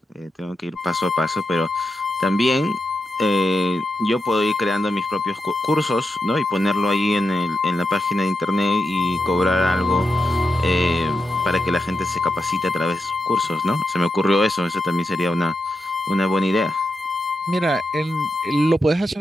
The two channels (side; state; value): both; normal; correlation 0.88